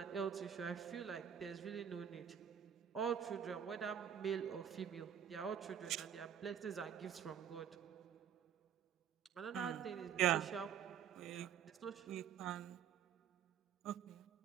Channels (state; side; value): quieter; left; 8.7 dB